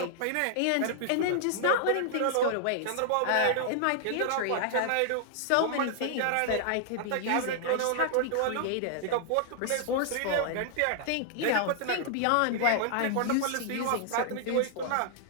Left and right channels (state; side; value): different; both; correlation -0.01